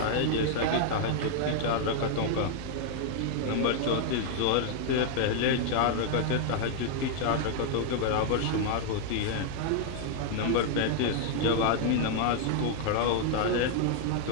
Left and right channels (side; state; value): both; different; correlation 0.00